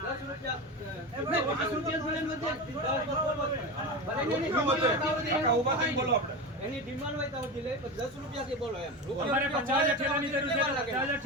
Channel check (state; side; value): normal; both; correlation 0.23